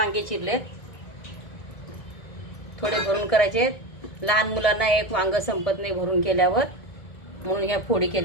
चिरलेत, थोडे भरून करायचे. लहान मुलांना एक वांग संपत नाही भरून केल्यावर, म्हणून ह्या फोडी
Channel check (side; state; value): right; late; 1.7 ms